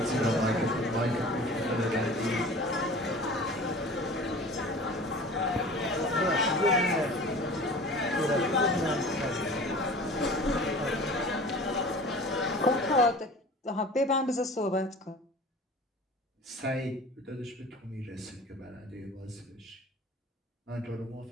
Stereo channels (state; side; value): normal; both; correlation 0.41